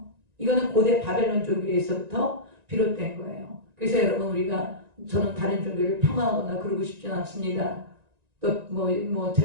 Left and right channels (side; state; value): left; late; 1.9 ms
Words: 이거는 고대 바벨론 종교에서부터 비롯된 거예요. 그래서 여러분 우리가 저는 다른 종교를 폄하하거나 그러고 싶지는 않습니다. 또